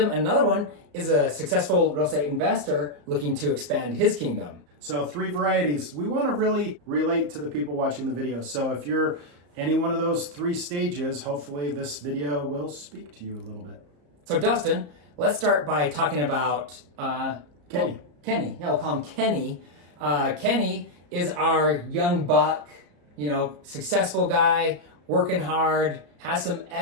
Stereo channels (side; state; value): left; late; 34 ms